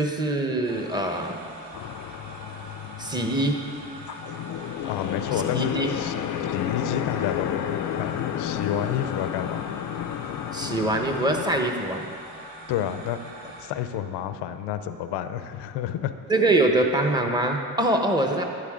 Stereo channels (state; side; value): normal; both; correlation 0.26